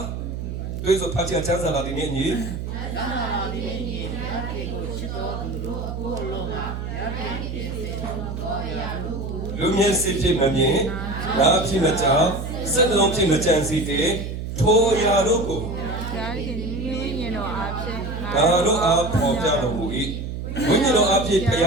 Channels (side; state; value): right; noise; hum, 6 dB below the sound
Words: တွေ့ဆိုဖတ်ချင်ချမ်းသာလာဒီနေ့ညီလူမြင်စစ်ဖြစ်မမြင်နားဖြစ်မကြောက်စက်လုံးဖြစ်မကြံစီတဲ့ထိုရာတို့ကိုရားခင်ဝိညာဉ်တော်အားဖြင့်ဒါတို့အားပေါ်ပြတော်မူ၏ဝိညာဉ်တော်အားဖြင့်ဘုရ